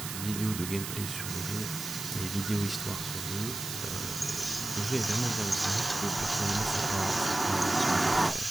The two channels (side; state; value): right; noise; hiss, 6 dB below the sound